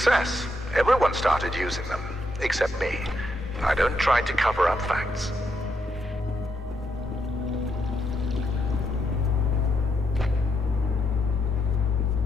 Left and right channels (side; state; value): both; normal; correlation 0.79